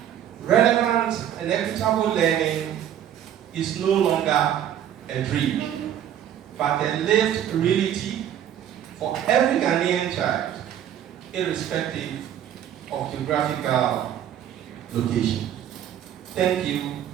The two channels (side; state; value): left; quieter; 10.3 dB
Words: relevant and equitable learning is no longer a dream, but a lived reality for every Ghanaian child, irrespective of geographical location. Thank you,